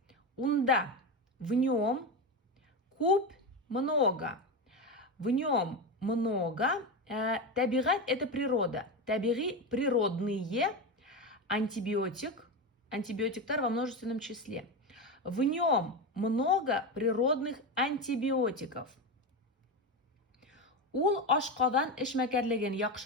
Унда в нем куб много. В нем много. Табигать это природа. Табиги природные. Антибиотиктар во множественном числе. В нем много природных антибиотиков. Ул ашкадан эшмәкәрлеген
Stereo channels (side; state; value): both; normal; correlation 0.17